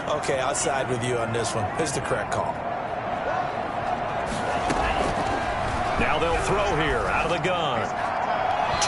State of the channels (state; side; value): identical; both; correlation 1.00